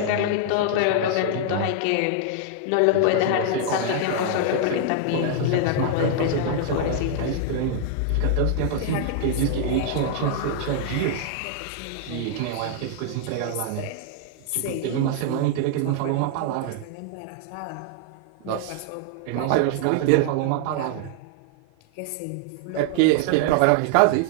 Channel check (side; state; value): both; different; correlation 0.00